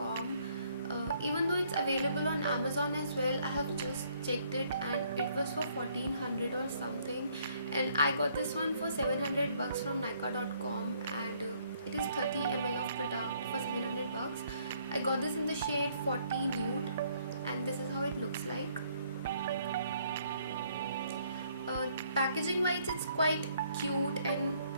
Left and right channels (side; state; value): both; inverted; correlation -0.66